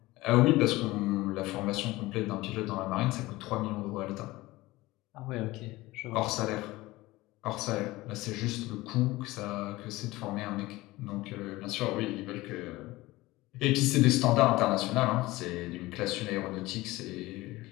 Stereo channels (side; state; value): right; quieter; 19.4 dB